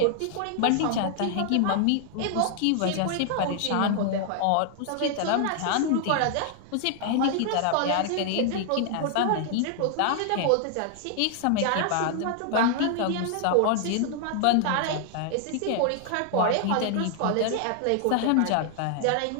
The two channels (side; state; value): both; different; correlation 0.00